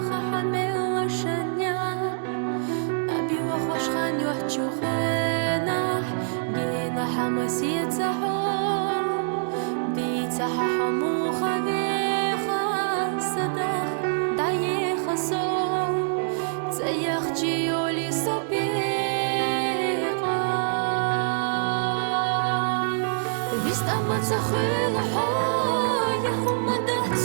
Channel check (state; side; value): silent; left; digital silence